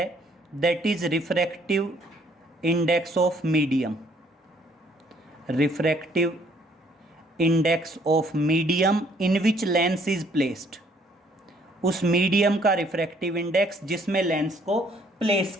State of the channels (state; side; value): normal; both; correlation 0.64